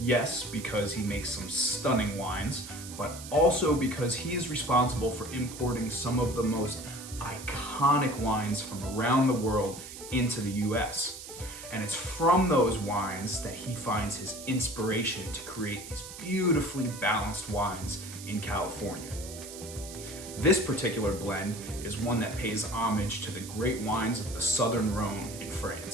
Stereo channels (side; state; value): right; noise; hiss, 12 dB below the sound